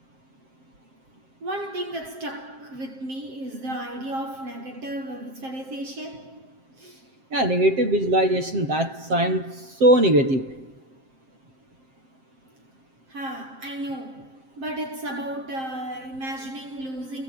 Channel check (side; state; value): left; late; 7.6 ms